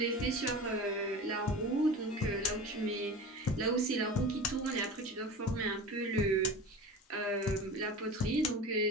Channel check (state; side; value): normal; both; correlation 0.33